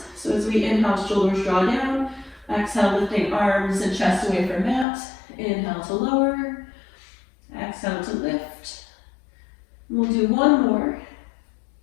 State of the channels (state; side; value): drops out; right; at 4.9 s